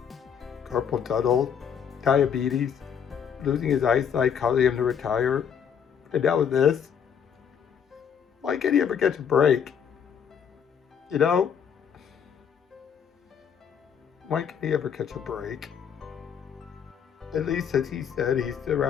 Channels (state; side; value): quieter; right; 7.8 dB